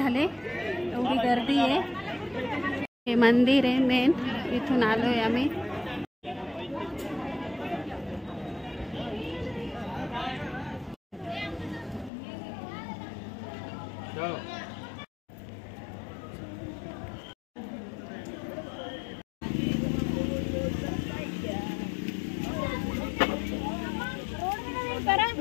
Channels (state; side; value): drops out; right; at 12.1 s